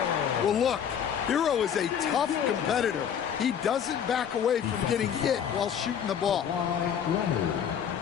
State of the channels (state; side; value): quieter; right; 8.4 dB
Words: Well, look, Hero is a tough competitor. He doesn't back away from getting hit while shooting the ball. Leonard,